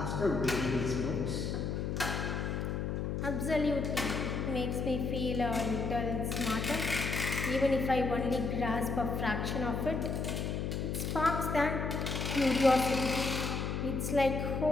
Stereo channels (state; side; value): noise; left; hum, 1 dB below the sound